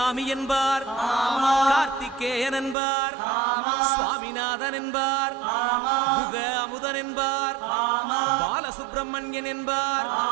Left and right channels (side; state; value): left; drops out; at 2.8 s